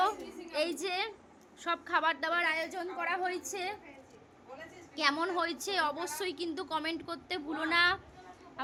এই যে সব খাবার দাবার আয়োজন করা হয়েছে। কেমন হয়েছে অবশ্যই কিন্তু কমেন্ট করতে ভুলো না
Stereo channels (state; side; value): identical; both; correlation 1.00